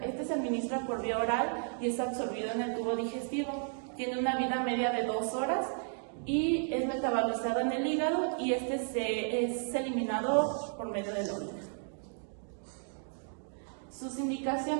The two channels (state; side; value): silent; left; 55 dB below the other